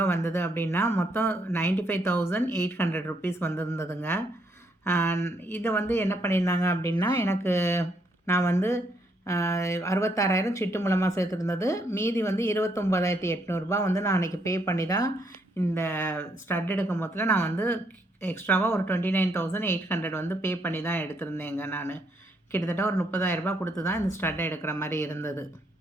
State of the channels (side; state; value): both; normal; correlation 0.73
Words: வந்தது அப்படின்னா மொத்தம் 95,800 ருபீஸ் வந்திருந்ததுங்க. இதை வந்து என்ன பண்ணியிருந்தாங்க அப்படின்னா எனக்கு நான் வந்து 66,000 சிட்டு மூலமாக சேர்த்துருந்தது. மீதி வந்து 29,800 ரூபா வந்து நான் அன்றைக்கி பே பண்ணி தான் இந்த ஸ்டட் எடுக்கும் போதில் நான் வந்து எக்ஸ்ட்ராவாக ஒரு 29,800 வந்து பே பண்ணி தான் எடுத்திருந்தேங்க நான். கிட்டத்தட்ட ஒரு 30,000 ரூபா கொடுத்து தான் இந்த ஸ்டட்டை எடுக்கிற மாதிரி இருந்தது.